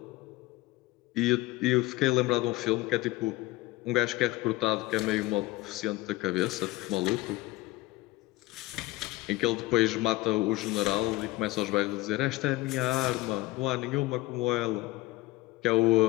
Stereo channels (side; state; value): right; quieter; 19.4 dB